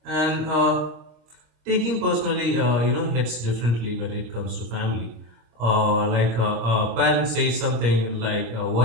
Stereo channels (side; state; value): left; late; 26 ms